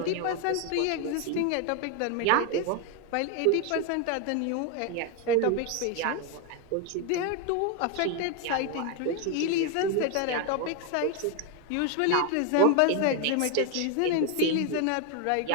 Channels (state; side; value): different; both; correlation 0.02